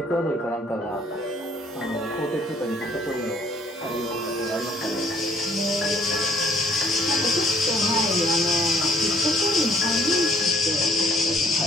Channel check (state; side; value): normal; both; correlation 0.62